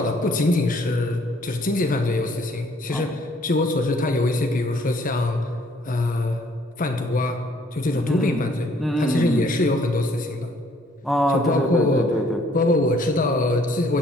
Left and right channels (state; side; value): normal; both; correlation 0.62